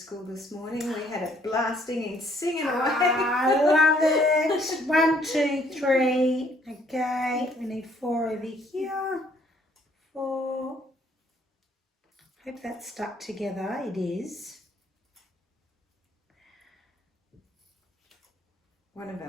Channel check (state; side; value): normal; both; correlation 0.64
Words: this morning, we had it blasting and singing away. I love it. 1, 2, 3. Okay, we need 4 over here. 4. Hope that's stuck together. It is. One of